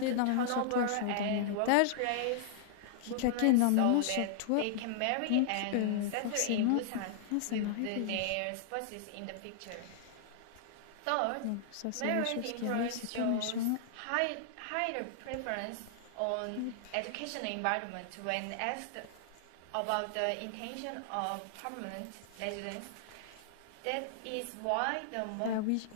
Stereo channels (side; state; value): both; different; correlation -0.01